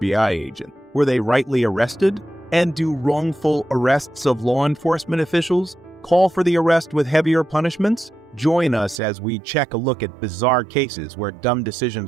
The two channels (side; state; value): left; drops out; at 9.0 s